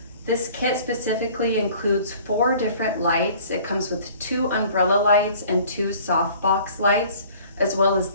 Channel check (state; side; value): inverted; both; correlation -0.51